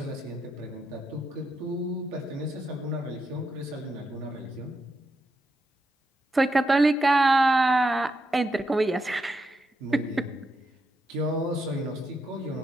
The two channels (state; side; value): normal; both; correlation 0.83